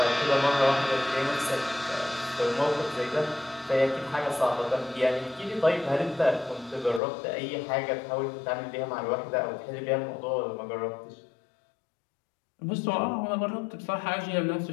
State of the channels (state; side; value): drops out; right; at 7.0 s